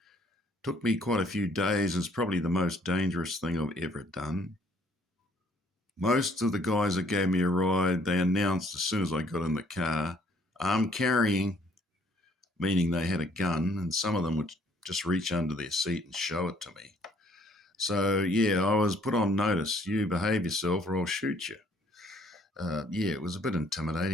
Took me quite a few days. It's probably the most dangerous thing I've ever done. Most of the guys that gave me a ride, they announced as soon as I got in the car, "I'm carrying," meaning they had a gun, and some of them would just reach under their seat and show it to me. So, yeah, I was put on notice. You behave yourself or I'll shoot you. It was a bit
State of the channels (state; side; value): normal; both; correlation 0.62